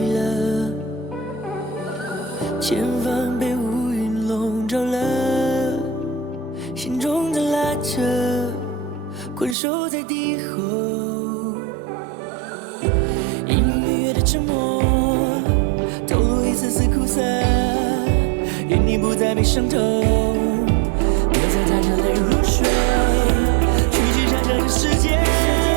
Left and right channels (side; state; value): left; drops out; at 9.6 s